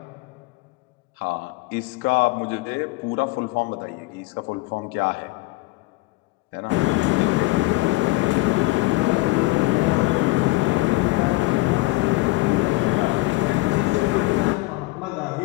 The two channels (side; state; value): right; quieter; 21.0 dB